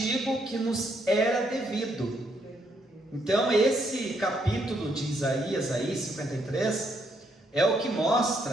que nos era devido. Então esse capítulo de Isaías aí, 53, é o que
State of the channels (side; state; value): both; normal; correlation 0.74